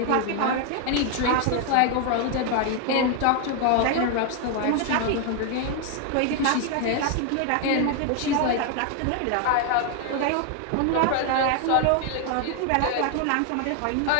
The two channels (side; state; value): both; different; correlation 0.01